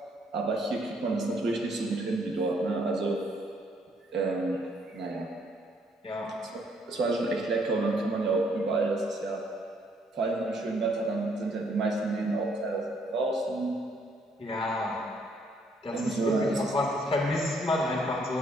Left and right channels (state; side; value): normal; both; correlation 0.68